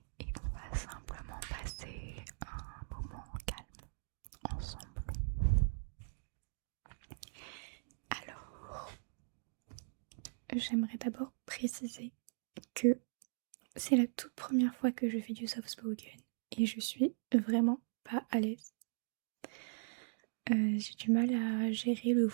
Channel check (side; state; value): left; silent; digital silence